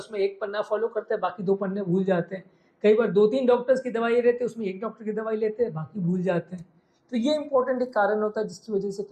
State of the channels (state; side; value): identical; both; correlation 1.00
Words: 1 पन्ना फॉलो करते हैं, बाकी 2 पन्ने भूल जाते हैं। कई बार 2-3 डॉक्टर्स की दवाइयाँ रहते हैं, उसमें 1 डॉक्टर की दवाई लेते हैं, बाकी भूल जाते हैं। तो ये इंपॉर्टेंट एक कारण होता है जिसकी वजह से